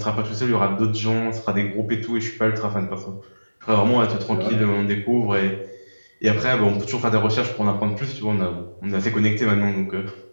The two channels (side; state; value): both; inverted; correlation -1.00